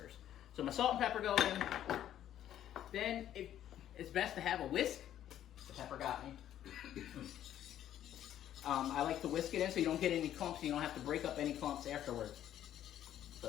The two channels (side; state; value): right; quieter; 11.3 dB